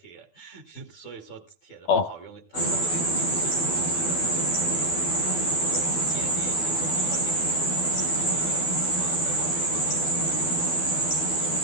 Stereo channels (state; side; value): late; right; 12 ms